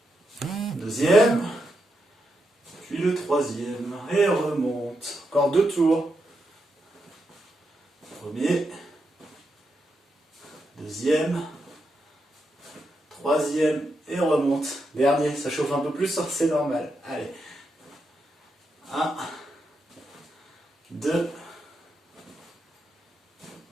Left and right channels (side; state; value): both; normal; correlation 0.84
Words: Deuxième. Puis le troisième. Et remonte. Encore 2 tours. Premier. Deuxième. Troisième. Et on remonte. Dernier. Ça chauffe un peu plus, c'est normal. Allez. 1. 2.